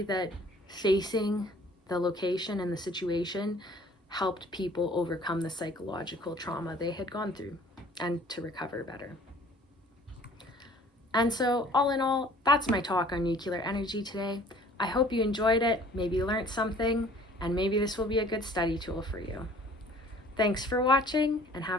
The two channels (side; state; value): both; normal; correlation 0.53